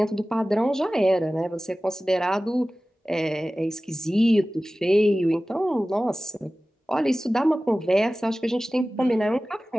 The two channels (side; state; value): both; normal; correlation 0.97